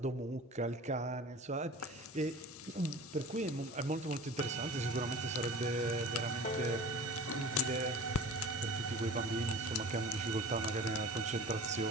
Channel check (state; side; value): normal; both; correlation 0.39